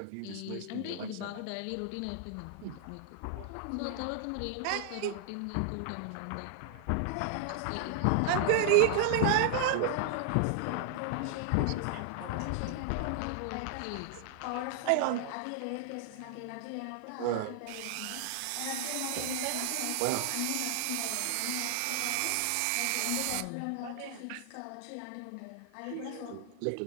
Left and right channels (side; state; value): both; different; correlation 0.00